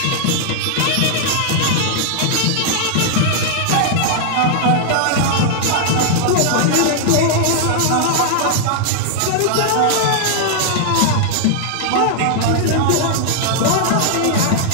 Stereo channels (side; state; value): both; different; correlation -0.01